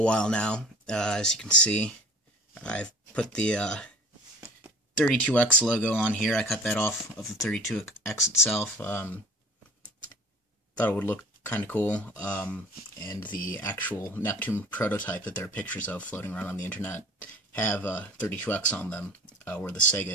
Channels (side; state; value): both; normal; correlation 0.45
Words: while now. As you can see, I've put the 32X logo on here. I cut that off of the 32X itself. Thought it would look kind of cool. And the actual Neptune prototype that there are pictures of floating around on the internet have 32X on them, where the Sega